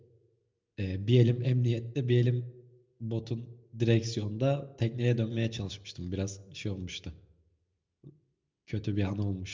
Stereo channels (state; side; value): identical; both; correlation 1.00